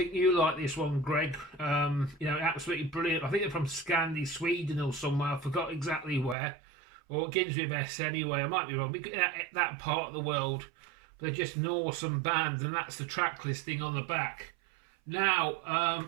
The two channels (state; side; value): drops out; left; at 6.4 s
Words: you like this one, Greg. You know, absolutely brilliant. I think they're from Scandi, Sweden or somewhere. I forgot exactly where. Or it begins with S anyway. I might be wrong. That part of the world. They're just an awesome band, and that's the track listing on the back. Now,